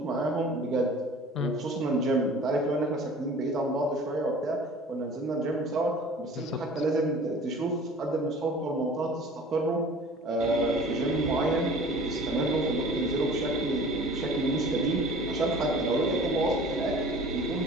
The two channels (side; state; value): both; normal; correlation 0.45